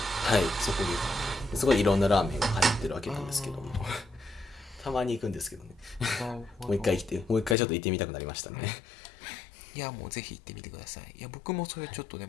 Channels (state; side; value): drops out; right; at 7.6 s